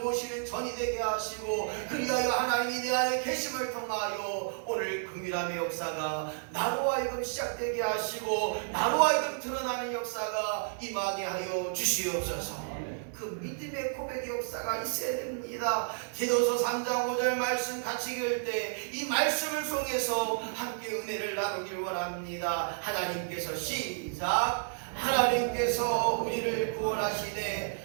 전이 되게 하시고 그리하여 하나님이 내 안에 계심을 통하여 오늘 긍휼함의 역사가 나로 하여금 시작되게 하시고 나로 하여금 드러나는 역사가 임하게 하여 주시옵소서. 그 믿음의 고백의 역사가 있어야 됩니다. 디도서 3장 5절 말씀 같이 읽을 때 이 말씀을 통해서 함께 은혜를 나누길 원합니다. 하나님께서 시작. 하나님께서 우리를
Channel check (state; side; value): silent; left; digital silence